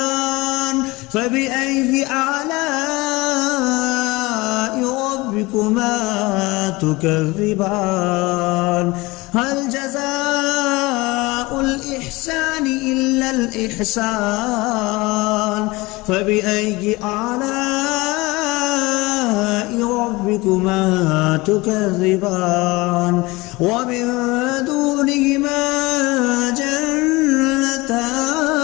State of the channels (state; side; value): quieter; right; 22.5 dB